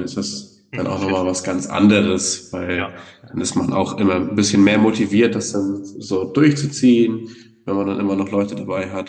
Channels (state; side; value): identical; both; correlation 1.00